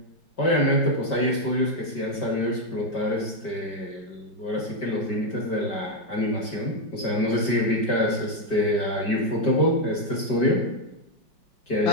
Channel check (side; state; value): right; late; 5.2 ms